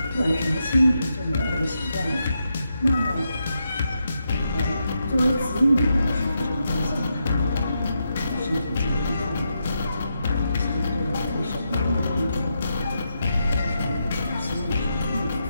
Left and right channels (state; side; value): inverted; both; correlation -0.84